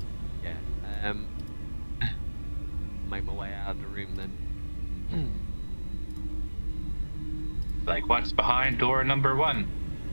Yeah. Make my way out of the room then. Like, what's behind door number 1?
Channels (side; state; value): both; inverted; correlation -1.00